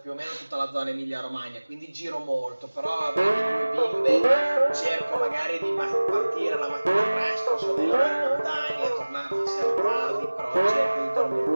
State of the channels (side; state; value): both; inverted; correlation -1.00